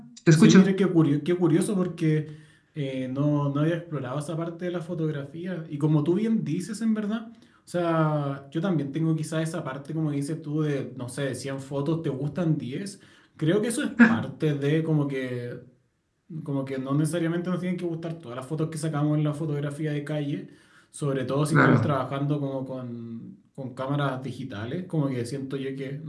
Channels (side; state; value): both; identical; correlation 1.00